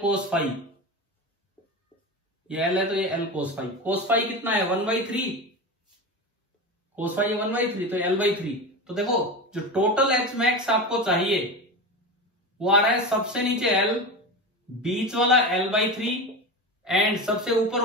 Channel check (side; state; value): both; normal; correlation 0.24